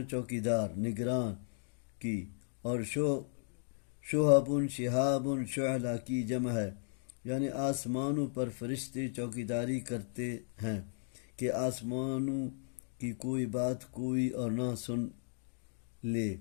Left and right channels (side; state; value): right; silent; digital silence